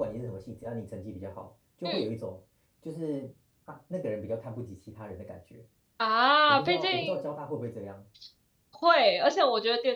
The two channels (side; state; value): both; identical; correlation 1.00